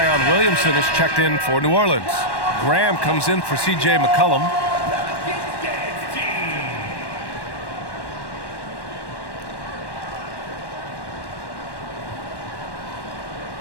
Williamson is checked in for New Orleans. Graham comes in for C.J. McCollum.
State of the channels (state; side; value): late; right; 1.1 ms